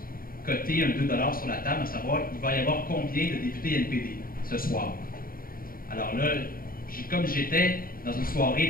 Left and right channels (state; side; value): late; right; 0.42 ms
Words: coté un 2 $ sur la table, à savoir il va y avoir combien de députés NPD ce soir. Alors là, comme j'étais dans une soirée